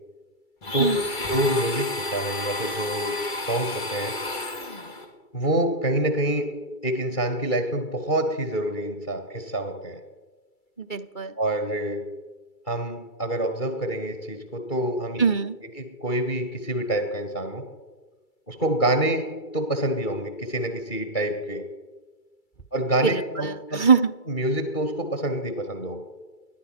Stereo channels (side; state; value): right; late; 2.3 ms